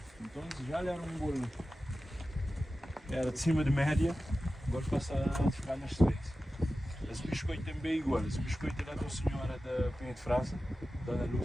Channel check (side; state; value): both; normal; correlation 0.94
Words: Então já era um bolo, era de cima de média, agora passa a ficar nas 3. Esse biscoito também é igual, esse biscoito é da senhora da Penha de França, Dona